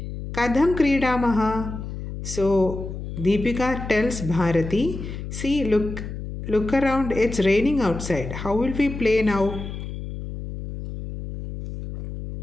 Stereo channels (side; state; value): left; noise; hum, 8 dB below the sound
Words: Kadham Kridamaha. So Deepika tells Bharati, see, look around, it's raining outside. How will we play now?